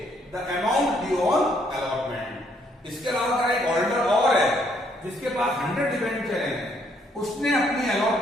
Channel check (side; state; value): both; normal; correlation 0.69